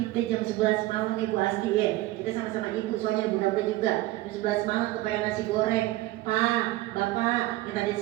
jam 11 malam Ibu Asti ya, kita sama-sama ibu soalnya muda-muda juga. Jam 11 malam kepengen nasi goreng. Pak, bapak minta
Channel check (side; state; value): left; quieter; 17.5 dB